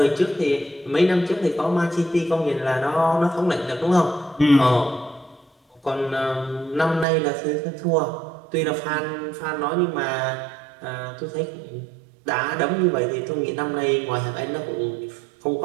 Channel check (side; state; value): left; drops out; at 7.1 s